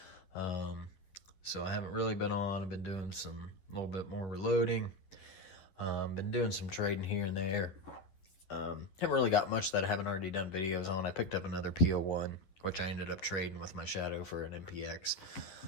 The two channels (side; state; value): right; late; 11 ms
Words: So I haven't really been on. I've been doing a little bit more reloading. Been doing some trading here and there. Haven't really got much that I haven't already done videos on. I picked up another PO1, which I ended up trading with my Shadow for an MPX.